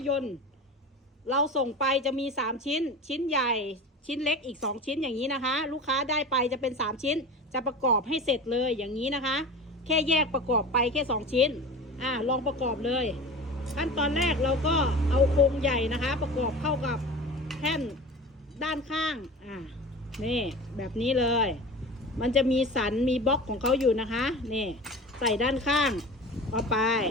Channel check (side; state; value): both; normal; correlation 0.34